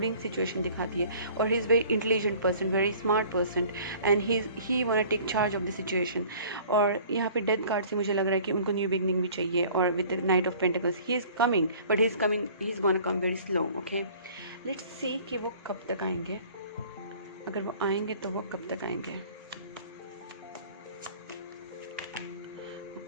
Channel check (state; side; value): inverted; both; correlation -0.50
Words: सिचुएशन दिखाती है, और he is very intelligent person, very smart person, and he want take charge of the situation. और यहाँ पे डेथ कार्ड से मुझे लग रहा है कि उनको न्यू बिगनिंग भी चाहिए। और with the night of pentacles he is coming, but he is gonna come very slow. Okay, let's see कि वो कब तक आएंगे, अगर वो आएंगे तो वो कब तक आएंगे।